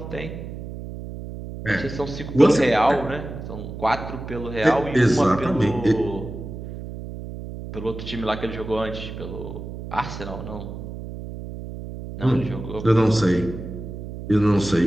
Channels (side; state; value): right; noise; hum, 10 dB below the sound